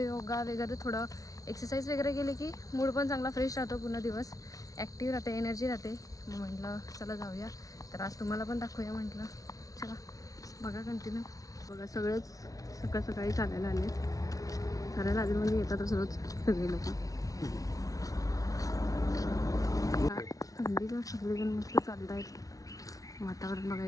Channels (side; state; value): right; late; 0.17 ms